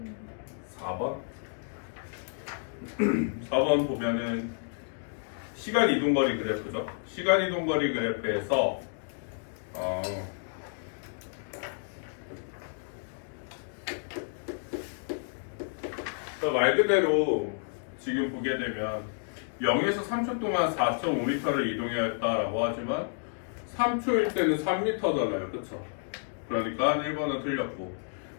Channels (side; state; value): right; silent; digital silence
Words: 4번? 4번 보면은 시간 이동거리 그래프죠. 시간 이동거리 그래프에서 말 그대로 지금 보게 되면 0에서 3초 동안 4.5m를 이동해야 했다라고 하지만 3초일 때는 3m잖아요. 그렇죠? 그러니까 1번은 틀렸고